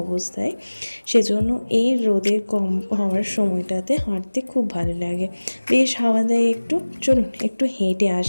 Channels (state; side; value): inverted; both; correlation -1.00